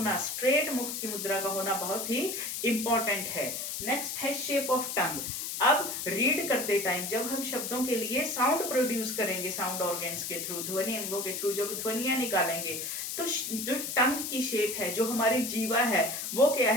स्ट्रेट मुख की मुद्रा का होना बहुत ही इंपॉर्टेंट है। नेक्स्ट है शेप ऑफ टंग। अब रीड करते टाइम जब हम शब्दों के लिए साउंड प्रोड्यूस करेंगे, साउंड ऑर्गन्स के थ्रू, ध्वनि अंगों के थ्रू जब ध्वनियां निकालेंगे, तो जो टंग की शेप है, जो हमारी जीवा है, वो क्या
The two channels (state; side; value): noise; left; hiss, 4 dB below the sound